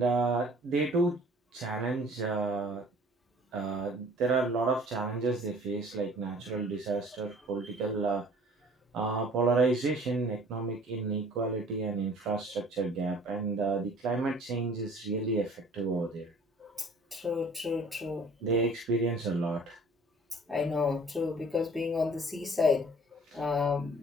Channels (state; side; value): normal; both; correlation 0.51